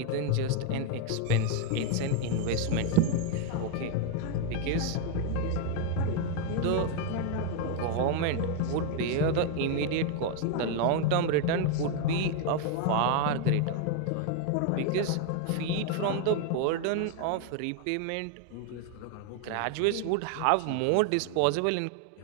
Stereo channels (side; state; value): both; different; correlation 0.01